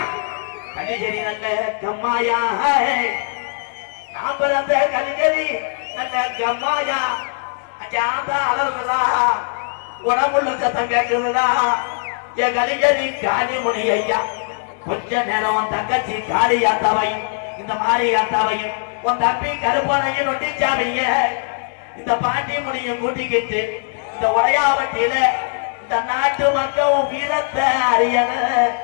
கலிஜரி நல்ல கம்மாயா நான் பிறந்த கலிஜரி நல்ல கம்மாயா அங்க ஆந்தா அலறுதா உடம்புள்ள சத்தம் கேட்குதுடா என் கலிஜரி காளி முனி ஐயா கொஞ்ச நேரம் உன் தங்கச்சி காளியாத்தாவை இந்த மாரியாத்தாவையும் உன் தம்பி கருப்பனையும் நொட்டிச்சாமிய இந்த பாட்டி முனியும் கூட்டிக்கிட்டு இந்த உடையாவட்டியில இந்த நாட்டு மக்கள் வீரத்தை அறியன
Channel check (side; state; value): right; silent; 58 dB below the other